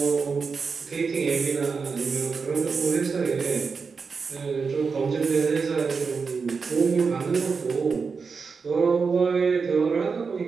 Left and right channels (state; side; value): quieter; left; 5.1 dB